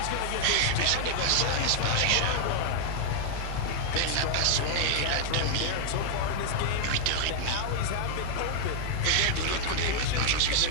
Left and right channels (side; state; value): both; different; correlation 0.00